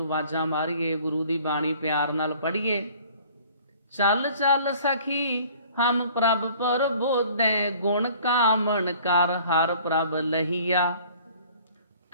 ਆਵਾਜ਼ਾਂ ਮਾਰੀਏ, ਗੁਰੂ ਦੀ ਬਾਣੀ ਪਿਆਰ ਨਾਲ ਪੜ੍ਹੀਏ। ਚੱਲ ਚੱਲ ਸਖੀ ਹਮ ਪ੍ਰਭ ਪ੍ਰਬੋਧੈ, ਗੁਣ ਕਾਮਣ ਕਰ ਹਰ ਪ੍ਰਭ ਲਹੀਆ।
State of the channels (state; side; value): inverted; both; correlation -0.52